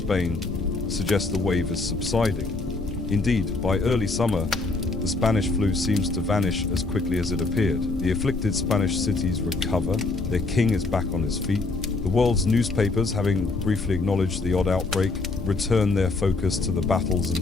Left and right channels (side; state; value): right; quieter; 3.5 dB